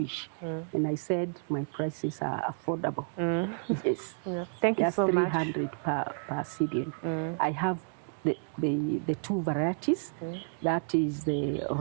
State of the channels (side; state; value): left; silent; 57 dB below the other